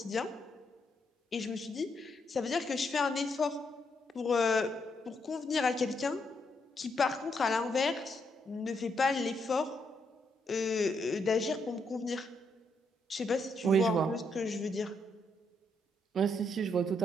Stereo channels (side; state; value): both; normal; correlation 0.77